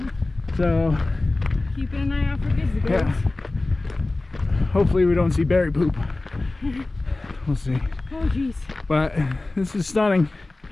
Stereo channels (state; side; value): quieter; right; 3.0 dB